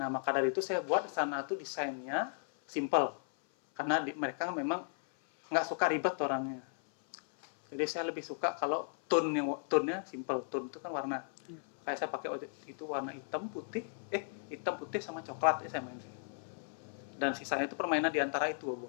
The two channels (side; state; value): right; silent; 54 dB below the other